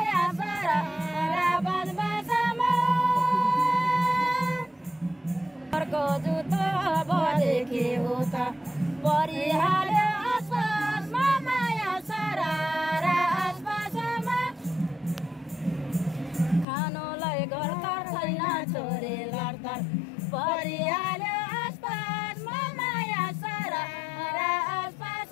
सरारा बजबजमा अर्को जुत्तो बजेकी हो त परिहाल्यो आसपासमा माया सरारा आसपासमा खानुलाई घर त छैन छोरी लड्तर परिहाल्यो आसपासमा माया सरारा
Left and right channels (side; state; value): right; drops out; at 16.7 s